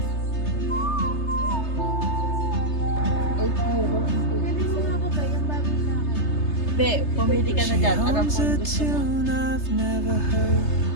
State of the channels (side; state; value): right; late; 3.3 ms